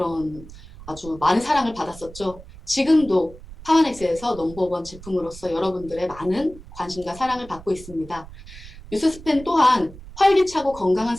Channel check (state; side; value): noise; right; rumble, 17 dB below the sound